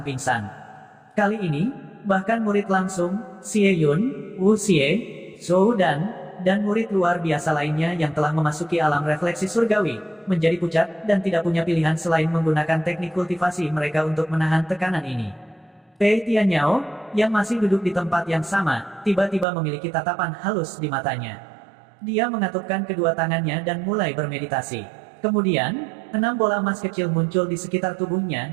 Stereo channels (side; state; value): left; drops out; at 19.5 s